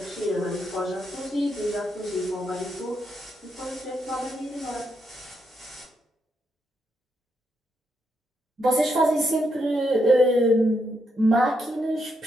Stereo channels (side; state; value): both; normal; correlation 0.80